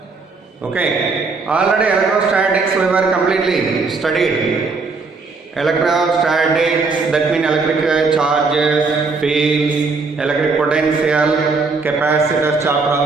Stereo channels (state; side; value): quieter; left; 4.3 dB